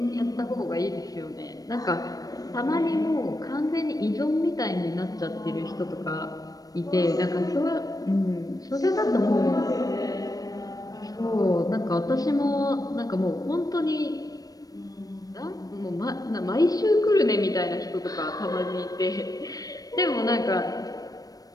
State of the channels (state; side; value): late; right; 0.18 ms